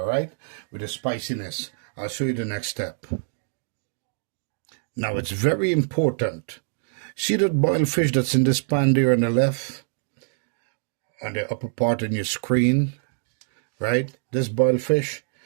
right, with the spiciness. I'll show you the next step. Now, it's very important. See that boiled fish that's in this pan there on the left, on the upper part in your screen, right? This boiled fish,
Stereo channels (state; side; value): silent; left; digital silence